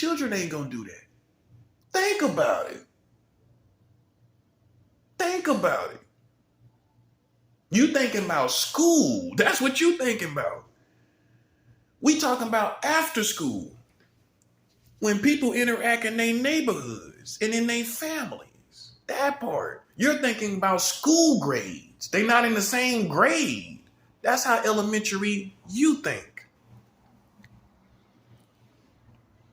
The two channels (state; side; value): identical; both; correlation 1.00